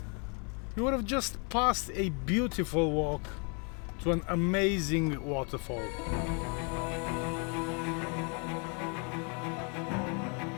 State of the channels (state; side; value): quieter; right; 36.4 dB